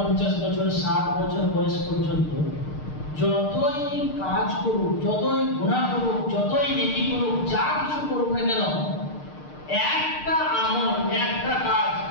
বছর, 60 বছর বয়স পর্যন্ত যতই কাজ করুক, যতই গুনাহ করুক, যতই নেকি করুক, যা কিছু করুক না কেন, একটা আমল, একটা কাজ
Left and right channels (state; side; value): late; right; 6.6 ms